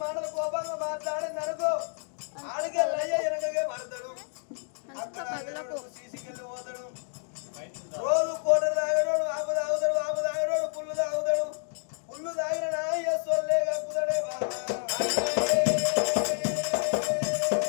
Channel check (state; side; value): silent; right; digital silence